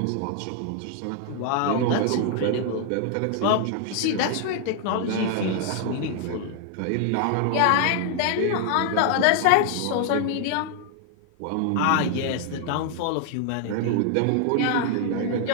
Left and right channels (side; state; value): both; different; correlation 0.00